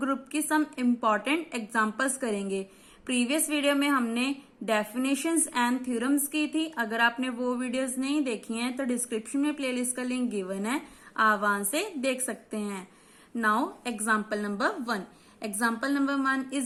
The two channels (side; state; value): both; identical; correlation 1.00